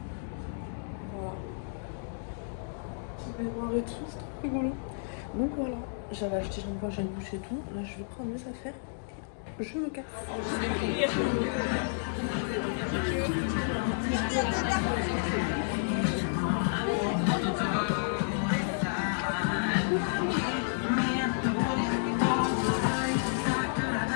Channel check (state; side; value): silent; right; digital silence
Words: Voilà. Petit baignoire et tout, c'est trop rigolo. Donc voilà, j'avais acheté shampoing, j'ai une douche et tout. Là je vais prendre mes affaires et je me casse.